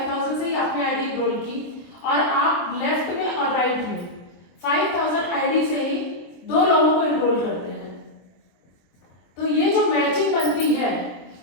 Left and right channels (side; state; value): right; late; 23 ms